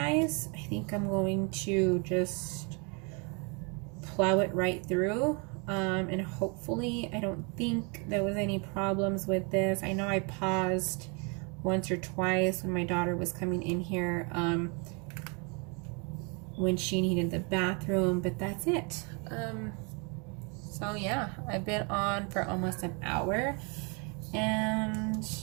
I think I'm going to just plow it right through. And hopefully, I don't think there was any problems with this. I know I paused once or twice when my daughter was coming in here, when she needed the bathroom, but that's it. So yeah, I've been on for almost an hour, and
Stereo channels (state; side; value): quieter; left; 33.7 dB